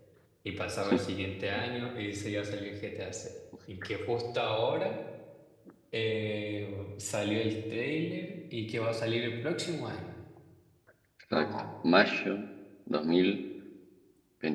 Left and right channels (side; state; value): both; identical; correlation 1.00